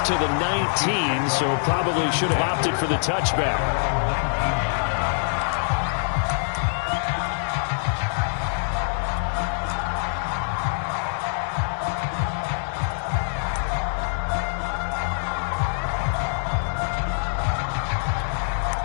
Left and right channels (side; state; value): right; silent; digital silence